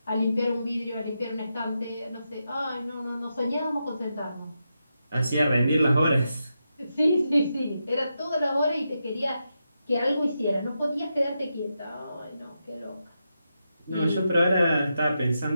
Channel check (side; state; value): both; inverted; correlation -0.87